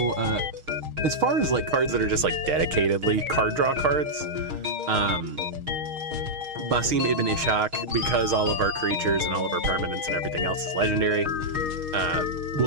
as far as like cards that are just like dedicatedly card draw cards, Basim Ibn Ishaq, because all of our creatures and all of our permanents and everything else is legendary,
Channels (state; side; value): late; left; 6.4 ms